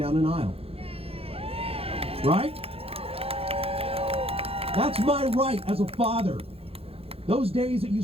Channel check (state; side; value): late; left; 0.28 ms